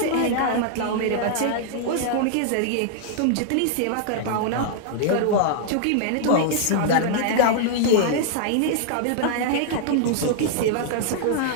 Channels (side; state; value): both; different; correlation -0.01